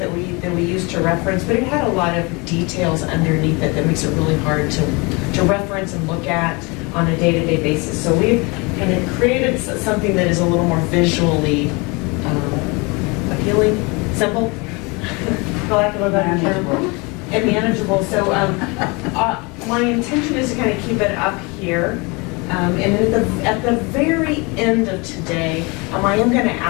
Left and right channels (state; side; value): quieter; right; 28.0 dB